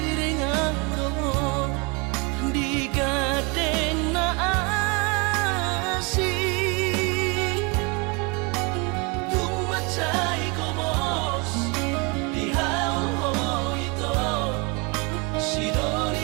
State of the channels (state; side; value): quieter; left; 30.5 dB